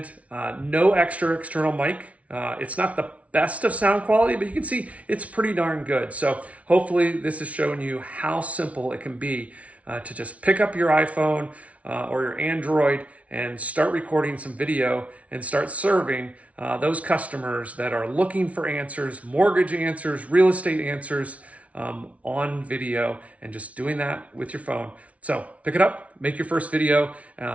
no extra external mic. It's not the best of sound quality, but you can see it's pretty darn good. So hopefully this has shown you how simple it can be to just pick up your iPhone or your Android and start recording some video and start serving those customers that are looking for answers, mortgage answers, real estate answers on video, and just doing that with your phone. So pick it up, make your first video,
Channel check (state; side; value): late; left; 0.065 ms